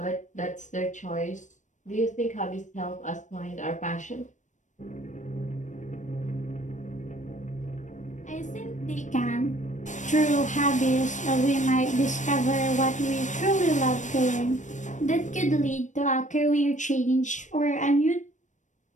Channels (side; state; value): right; late; 0.35 ms